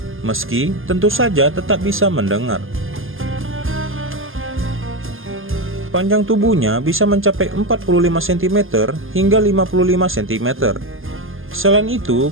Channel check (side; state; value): left; late; 0.59 ms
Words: meski tentu saja tetap bisa mendengar. Panjang tubuhnya bisa mencapai 45 cm hingga 55 cm. Selain